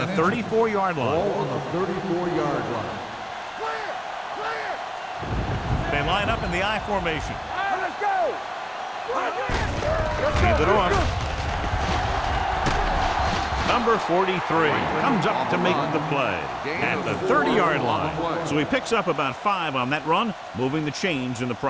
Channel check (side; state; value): both; identical; correlation 1.00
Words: 34-yard line. Ball on the 34-yard line. They line up in the I formation. Let's go. Hand it off. Number 43 comes up to make the play at the 30-yard line. So he picks up about 5 on that run, moving the chains in the